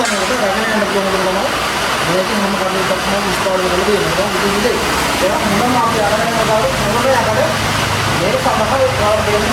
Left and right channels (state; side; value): identical; both; correlation 1.00